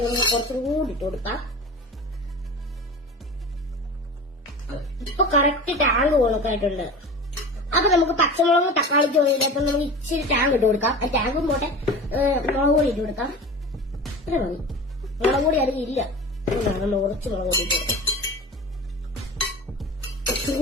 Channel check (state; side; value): normal; both; correlation 0.33